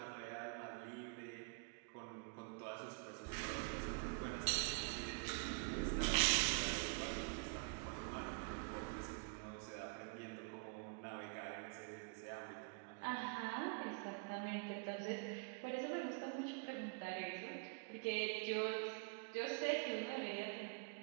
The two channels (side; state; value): left; quieter; 35.4 dB